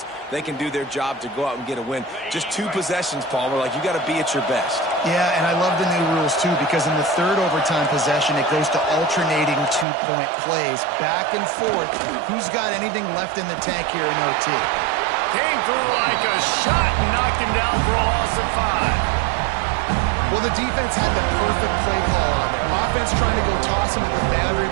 they can do their job to go out and get a win. Just 2 possessions, Palmer. Like, you got to be at your best. Yeah, and I love the new rules, too, because in the third overtime possession, it goes to alternating 2-point plays. Back and forth. Who's got anything left in the tank here in OT? Came through like a shot and knocked him down for a loss of 5. Well, the defense had the perfect play call on there. Offense trying to go toss him to the boundary,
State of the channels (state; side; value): drops out; left; at 9.9 s